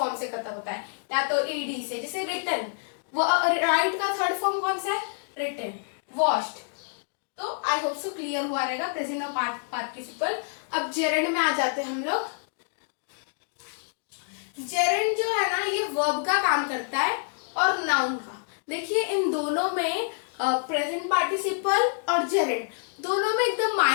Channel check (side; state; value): right; silent; digital silence